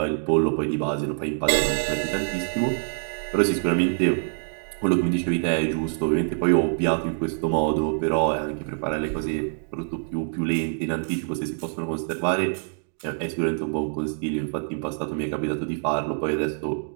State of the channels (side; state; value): left; silent; digital silence